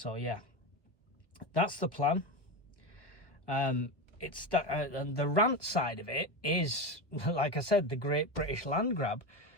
yeah, that's the plan. It's that, and the rant side of it is, like I said, the Great British Land Grab.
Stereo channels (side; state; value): right; late; 1.4 ms